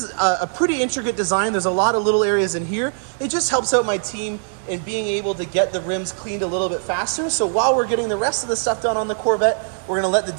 a pretty intricate design. There's a lot of little areas in here. It just helps out my team in being able to get the rims cleaned a little bit faster. So while we're getting the rest of the stuff done on the Corvette, we're going to let the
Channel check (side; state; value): left; silent; digital silence